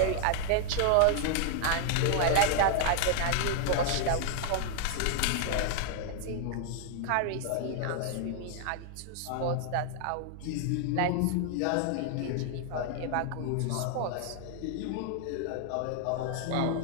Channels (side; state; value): both; different; correlation 0.00